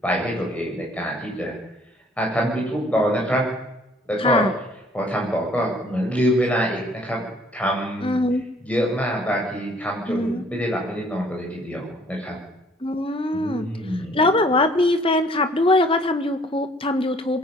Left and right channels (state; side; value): normal; both; correlation 0.58